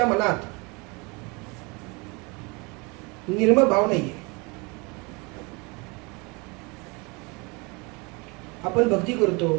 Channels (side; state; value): left; quieter; 28.2 dB